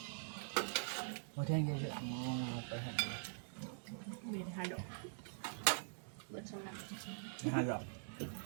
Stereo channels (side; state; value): left; silent; digital silence